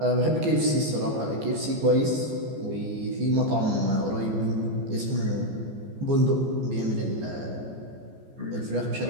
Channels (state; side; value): late; left; 14 ms